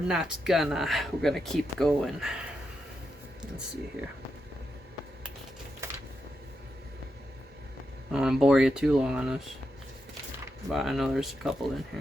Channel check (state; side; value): normal; both; correlation 0.85